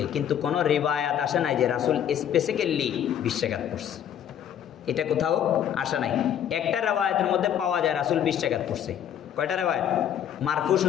কিন্তু কোনো রিওয়ায়াত আসে নাই যে রাসূল স্পেসিক্যালি 20 রাকাত পড়ছে, এটা কোথাও আসে নাই। একটা রিওয়ায়াতের মধ্যে পাওয়া যায় রাসূল 20 রাকাত পড়ছে। কয়টা রিওয়ায়াত? মারফু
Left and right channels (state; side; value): quieter; right; 9.7 dB